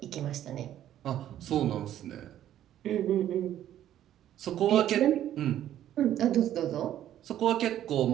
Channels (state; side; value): quieter; left; 11.7 dB